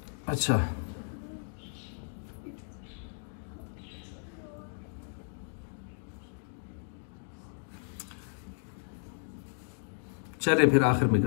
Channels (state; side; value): silent; right; digital silence